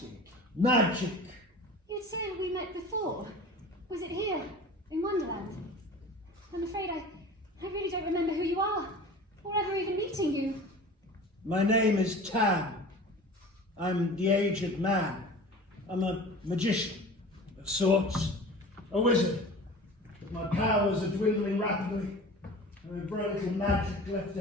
Magic! You'd said we met before. Was it here, in Wonderland? I'm afraid I really don't remember who you are, or ever even meeting you. My name is Tam. I'm the aged man. I'm a magician, of sorts. A wizard. But my powers are dwindling rapidly. There is very little magic left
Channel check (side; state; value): both; normal; correlation 0.39